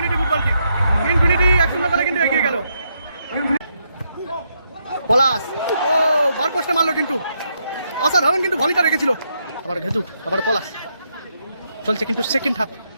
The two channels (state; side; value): inverted; both; correlation -0.79